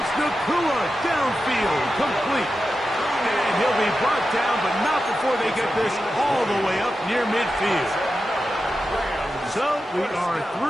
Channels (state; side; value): normal; both; correlation 0.91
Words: Nakua downfield, complete. And he'll be brought down, but not before they get this all the way up near midfield. So we are